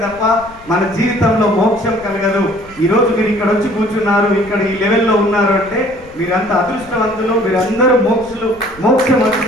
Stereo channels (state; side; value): noise; left; rumble, 22 dB below the sound